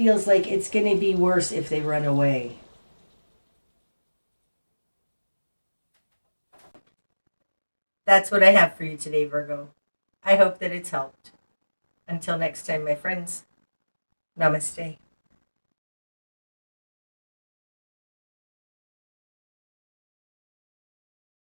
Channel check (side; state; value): both; inverted; correlation -1.00